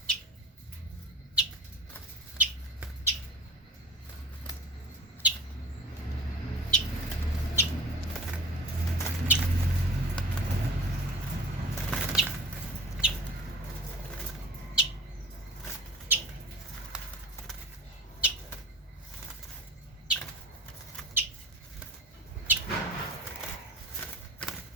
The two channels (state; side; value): normal; both; correlation 0.42